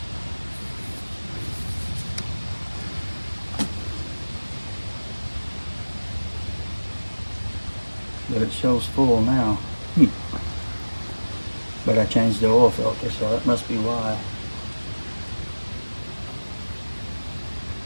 But it shows full now. But I changed the oil filter, so that must be why.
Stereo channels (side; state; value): both; inverted; correlation -1.00